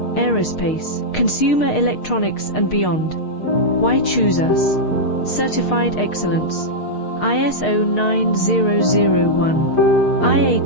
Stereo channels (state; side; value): late; right; 6.5 ms